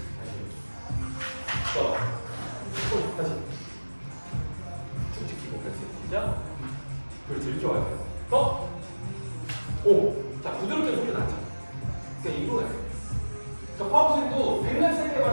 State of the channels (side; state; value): both; inverted; correlation -1.00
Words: 다시 쭉 지키고 그렇지. 시작. 그렇지. 이렇게 와야 돼요. 더. 오. 자, 부드럽게 소리 나죠. 그러니까 이거 해야 돼요. 그러니까 파워스윙도 백날